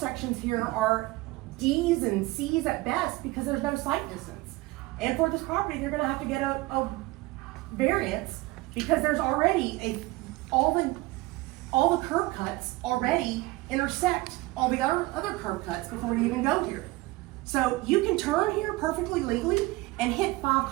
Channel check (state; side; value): quieter; left; 20.6 dB